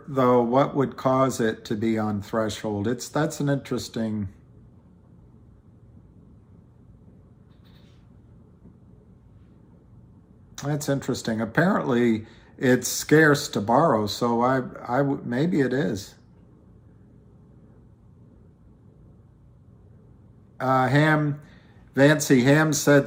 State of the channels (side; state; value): both; identical; correlation 1.00